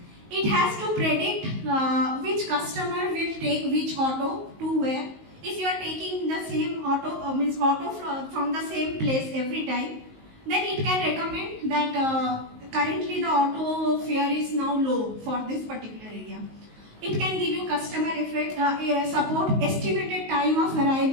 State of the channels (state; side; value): late; left; 19 ms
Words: It has to predict which customer will take which auto to where. If you are taking the same auto, from the same place every time, then it can recommend that currently the auto fare is now low for this particular area. It can give you customer support, estimated time of